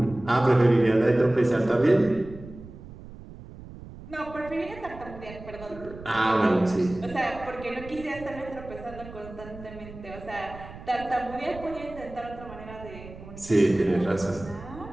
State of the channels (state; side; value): noise; right; rumble, 15 dB below the sound